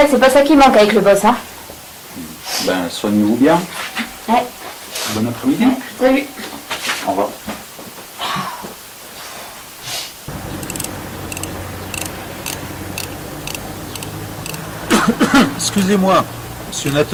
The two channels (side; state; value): both; identical; correlation 1.00